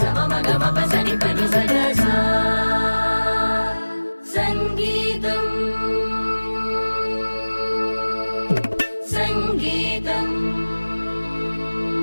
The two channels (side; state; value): both; inverted; correlation -1.00